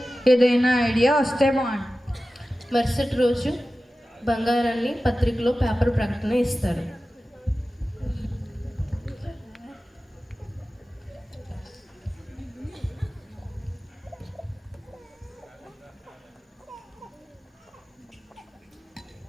ఏదైనా ఐడియా వస్తే బాగుంది. మరుసటి రోజు బంగారాన్ని పత్రికలో పేపర్ ప్రకటన ఇస్తారు.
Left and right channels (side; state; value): both; normal; correlation 0.95